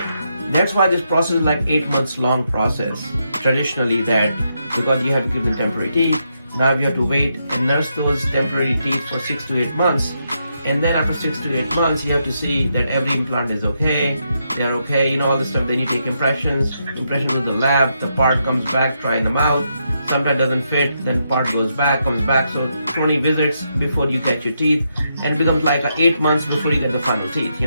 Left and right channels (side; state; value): both; inverted; correlation -0.81